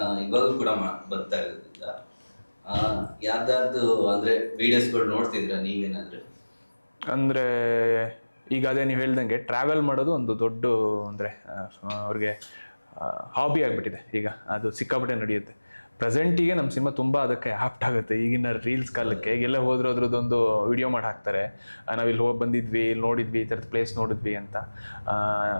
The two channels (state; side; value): inverted; both; correlation -1.00